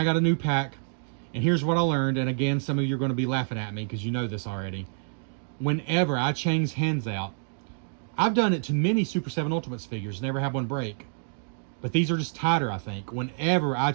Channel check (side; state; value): left; silent; digital silence